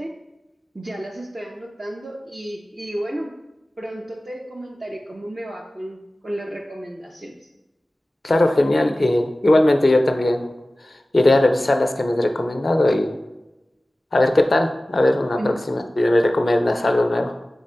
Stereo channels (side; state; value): both; normal; correlation 0.97